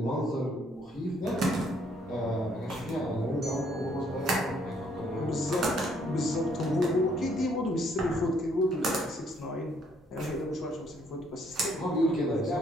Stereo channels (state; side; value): normal; both; correlation 0.67